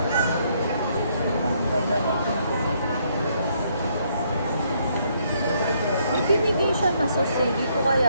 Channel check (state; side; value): inverted; both; correlation -0.71